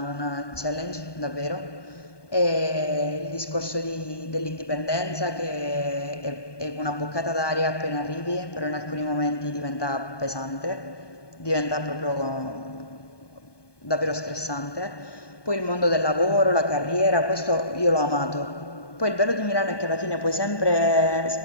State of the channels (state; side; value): late; right; 1.2 ms